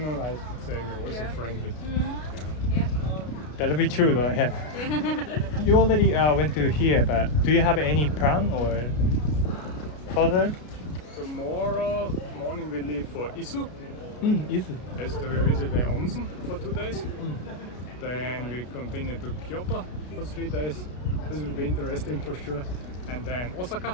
I would say we're also friendly. Yeah. That'll be true though, yeah. You already went to here, but do you have any plan or further? Tomorrow morning we leave for Isu. Is it? Yes, we visit the onsen for 2 days. Then we continue to Kyoto for 3 days. This will be interesting for sure. And then Osaka.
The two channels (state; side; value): late; right; 33 ms